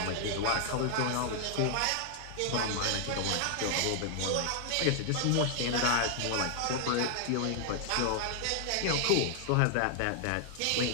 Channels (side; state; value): both; different; correlation 0.00